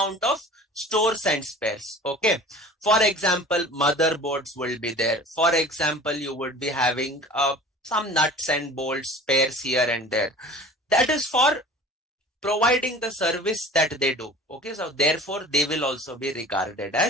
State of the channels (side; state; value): both; normal; correlation 0.42